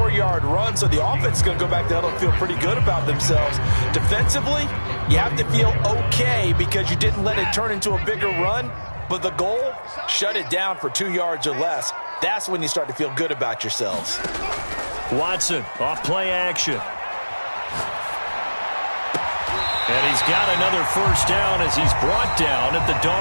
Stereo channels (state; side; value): inverted; both; correlation -1.00